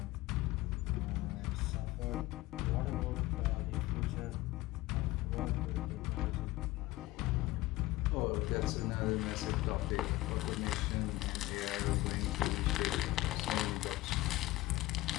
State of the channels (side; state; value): right; quieter; 18.4 dB